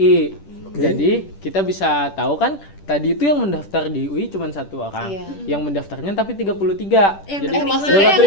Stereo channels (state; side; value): late; right; 10 ms